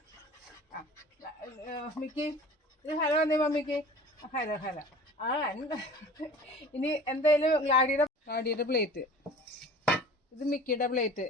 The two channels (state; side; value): normal; both; correlation 0.43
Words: ആ മിക്കി ഇത് ഹലോ അതെ മമ്മിക്ക്. Hello hello. ഇനി എന്തായാലും ഗ്ലാഡിയുടെ പ്ലേറ്റ്. ഇത് മിക്കിയുടെ പ്ലേറ്റ്.